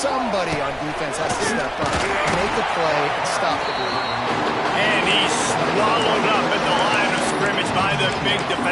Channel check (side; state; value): both; identical; correlation 1.00